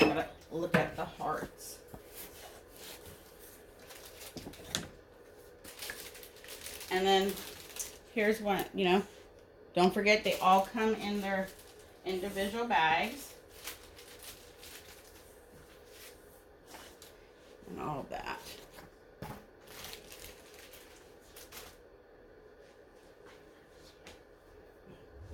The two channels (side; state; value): both; identical; correlation 1.00